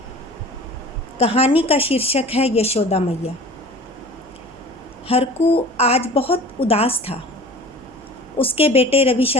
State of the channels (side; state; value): right; noise; hum, 26 dB below the sound